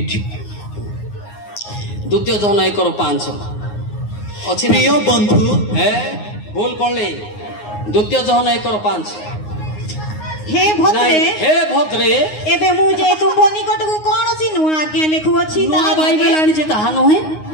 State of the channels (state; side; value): late; right; 9.6 ms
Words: ଦ୍ୱିତୀୟ ଯୋହନ 1:5 ଅଛି। ପ୍ରିୟ ବନ୍ଧୁ, ଭୁଲ ପଢିଲେ। ଦ୍ୱିତୀୟ ଯୋହନ 1:5। ହେ ଭଦ୍ରେ, ଏବେ ମୁଁ ଯେ ତୁମ୍ଭ ନିକଟକୁ କୌଣସି ନୂଆ ଆଜ୍ଞା ଲେଖୁଅଛି, ତାହା ବାଇବେଲ ଆଣିଛି ତାହା ନୁହେଁ,